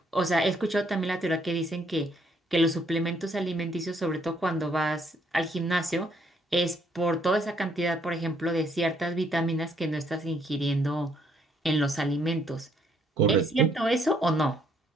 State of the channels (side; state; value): both; normal; correlation 0.69